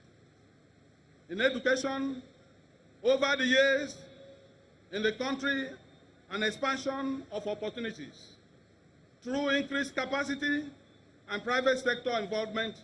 in education over the years in the country and expansion of opportunities through increased capacity and private sector involvement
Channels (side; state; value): both; identical; correlation 1.00